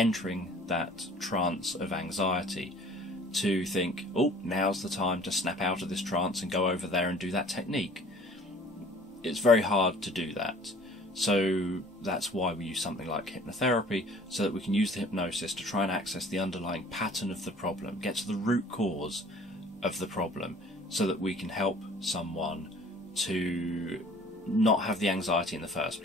that trance of anxiety to think, oh, now's the time to snap out of this trance and go over there and do that technique. It's very hard to do that. So that's why we use something like hypnotherapy, so that we can use the hypnosis to try and access the underlying pattern of the problem, get to the root cause of the problem, so that we can help someone to not have the anxiety in the first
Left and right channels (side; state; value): both; normal; correlation 0.51